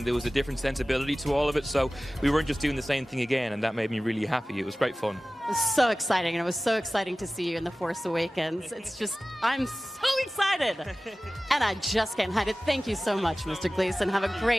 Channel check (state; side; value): normal; both; correlation 0.97